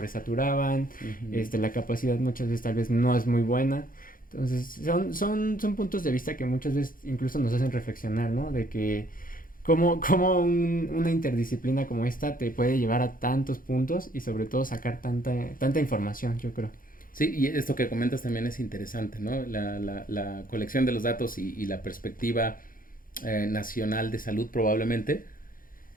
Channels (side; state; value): right; late; 0.40 ms